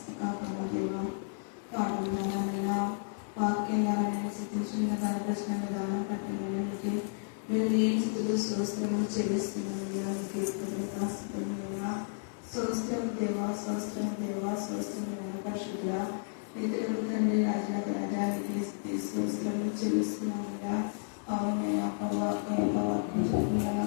పాఠంగానైనా వాక్యంగానైనా సిద్ధించిన కనపరిచిన విధానం పట్టినకి మేము ఏ స్థితిలో స్వస్థము చెల్లిస్తున్నామయ్యా. స్వస్థం దేవా స్వస్థం దేవా స్వస్థమైన పరిశుద్ధ ఇతరులు తండ్రి రాజానికి స్వస్థము చెల్లిస్తున్నామయ్యా. అవునైనా వాక్యం చెప్తున్నాను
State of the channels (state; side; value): silent; right; 56 dB below the other